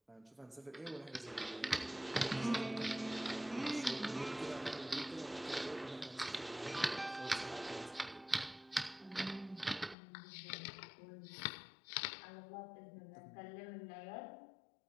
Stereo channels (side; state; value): right; drops out; at 10.0 s